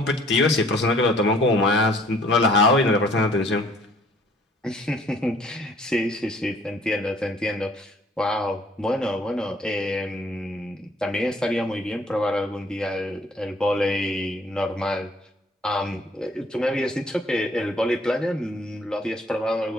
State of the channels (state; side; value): normal; both; correlation 0.57